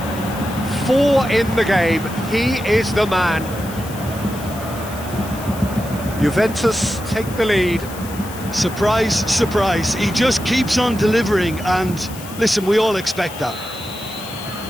4 in the game, he is the man. Juventus take the lead. Surprise, surprise, he just keeps on delivering, and listen, we all expect that.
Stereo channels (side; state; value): left; noise; hiss, 15 dB below the sound